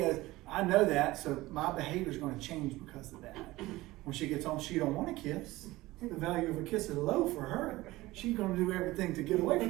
I know that, so my behavior is going to change because of that. When she gets home, she don't want a kiss. The value of a kiss is low for her. She's going to do everything to get away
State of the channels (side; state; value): left; quieter; 18.7 dB